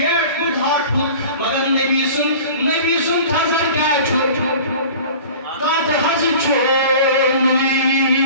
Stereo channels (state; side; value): inverted; both; correlation -0.41